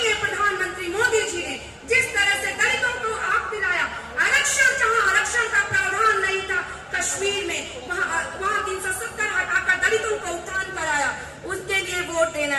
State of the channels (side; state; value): both; identical; correlation 1.00